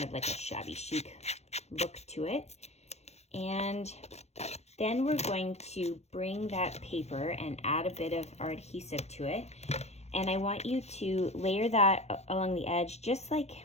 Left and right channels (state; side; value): late; right; 0.31 ms